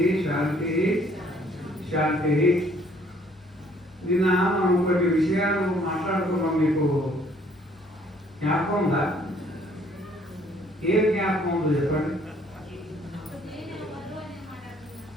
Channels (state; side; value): normal; both; correlation 0.62